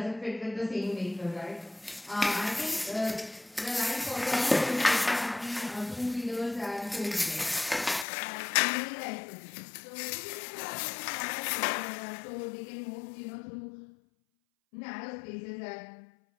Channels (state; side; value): drops out; right; at 8.1 s